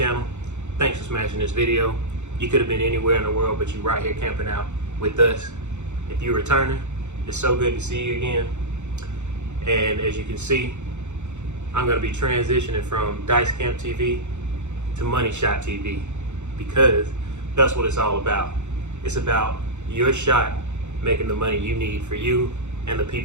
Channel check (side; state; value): left; late; 0.83 ms